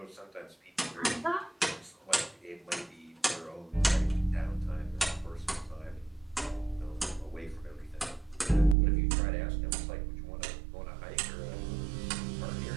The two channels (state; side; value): drops out; left; at 8.8 s